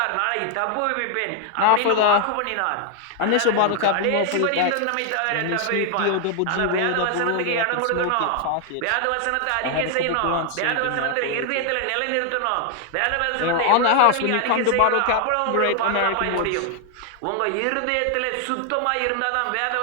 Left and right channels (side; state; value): both; different; correlation 0.00